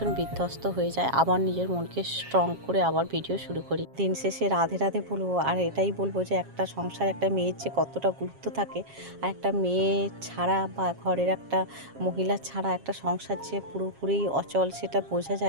বিধ্বস্ত হয়ে যায়, আবার নিজের মনকে স্ট্রং করে আবার ভিডিও শুরু করি। দিন শেষে রাধে রাধে বলবো, আর এটাই বলবো যে একটা সংসার, একটা মেয়ের যে কতটা গুরুত্ব থাকে, আর একটা মেয়ে ছাড়া বা ঘরের একটা মহিলা ছাড়া একটা সংসার যে পুরোপুরি অচল, সেটা বোঝা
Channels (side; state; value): left; late; 7.4 ms